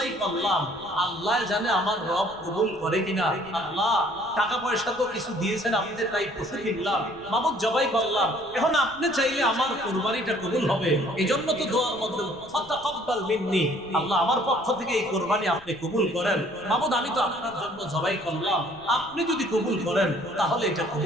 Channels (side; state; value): left; noise; rumble, 24 dB below the sound